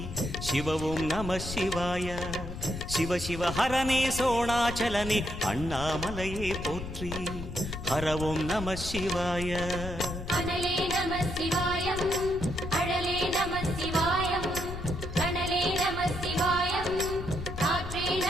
சிவவும் நம சிவாய. சிவ சிவ ஹரனே சோணாச்சலனே அண்ணாமலையே போற்றி. ஹரவும் நம சிவாய. அனலே நம சிவாயம், அழலே நம சிவாயம், கனலே நம சிவாயம், காற்றே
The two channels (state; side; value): noise; left; rumble, 8 dB below the sound